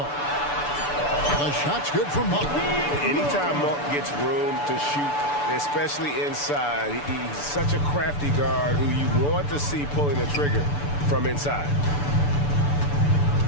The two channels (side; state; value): right; late; 6.9 ms